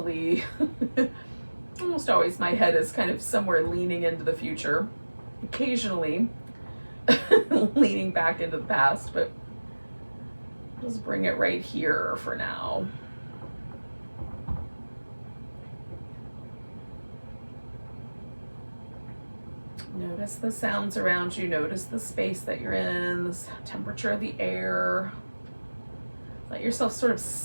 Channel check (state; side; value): inverted; both; correlation -1.00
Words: Almost always my head is kind of somewhere leaning into the future. Occasionally leaning back into the past, but just bring it right here for now. Notice the sounds around you. Notice the space that you're in, the temperature of the air. Let yourself sort of